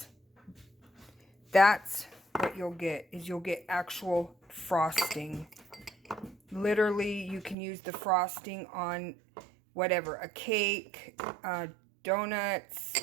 that's what you'll get, is you'll get actual frosting. Literally, you can use the frosting on whatever, a cake, donuts,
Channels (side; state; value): left; drops out; at 7.6 s